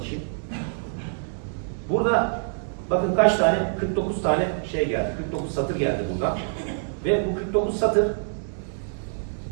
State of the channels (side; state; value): left; silent; 61 dB below the other